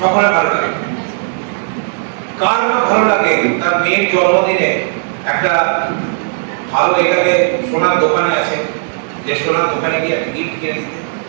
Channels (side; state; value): left; silent; digital silence